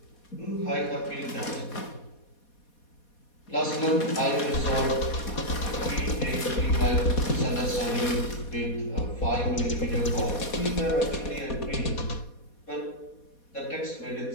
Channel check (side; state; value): right; late; 4.2 ms